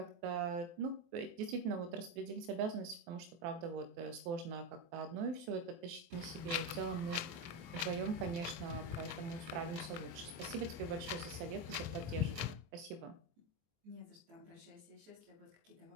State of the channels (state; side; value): late; left; 24 ms